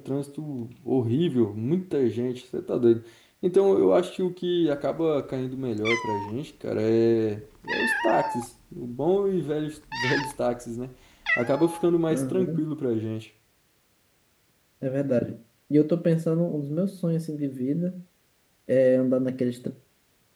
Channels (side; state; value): both; identical; correlation 1.00